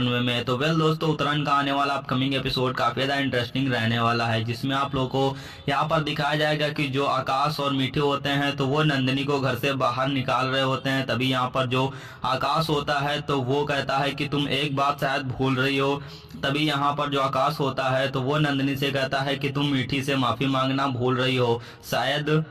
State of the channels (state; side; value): identical; both; correlation 1.00